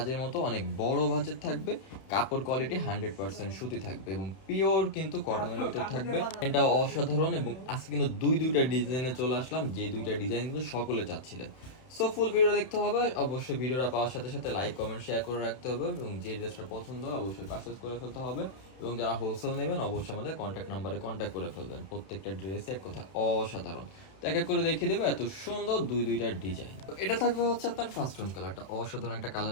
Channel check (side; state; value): right; late; 31 ms